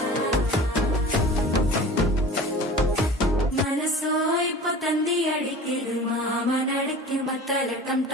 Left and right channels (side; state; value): both; normal; correlation 0.39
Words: മനസ്സോ ഇപ്പൊ തന്തി അടിക്കിത് മാമനടക്കി മത്തള ടം